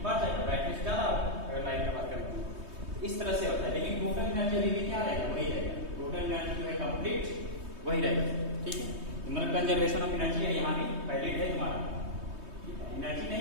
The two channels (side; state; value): left; late; 3.2 ms